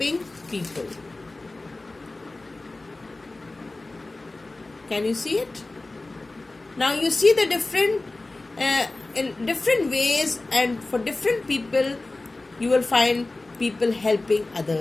people. Can you see it? Now you see the different, in different ways, and for different people, you will find people helping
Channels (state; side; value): quieter; right; 3.1 dB